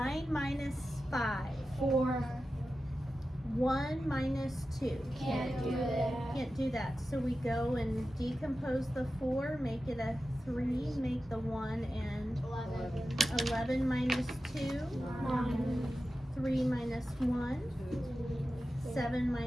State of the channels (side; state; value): both; normal; correlation 0.93